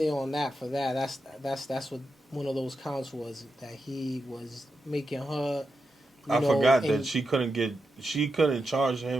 on that for that. That's what one of those counts was, that he was making her. I forgot that she couldn't charge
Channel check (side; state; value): both; normal; correlation 0.88